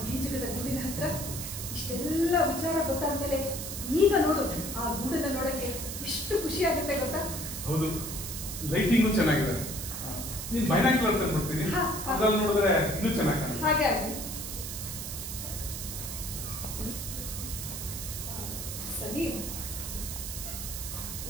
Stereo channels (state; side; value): noise; right; hiss, 6 dB below the sound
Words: ಗೀಜಕದ ಗೂಡಿನ ಹತ್ರ ಇಷ್ಟೆಲ್ಲ ವಿಚಾರ ಗೊತ್ತಾದ್ಮೇಲೆ ಈಗ ನೋಡು, ಆ ಗೂಡನ್ನ ನೋಡಕ್ಕೆ ಎಷ್ಟು ಖುಷಿ ಆಗುತ್ತೆ ಗೊತ್ತಾ? ಹೌದು, ಲೈಟಿಂಗು ಚೆನ್ನಾಗಿದೆ. ನೀನ್ ಬೈನಾಕ್ಯುಲರ್ ತಂದ್ಬಿಡ್ತೀನಿ, ಅದ್ರಲ್ಲಿ ನೋಡಿದ್ರೆ ಇನ್ನೂ ಚೆನ್ನಾಗಿ ಕಾಣುತ್ತೆ. ಹಾಗೆ ಆಗಲಿ. ಸರಿ,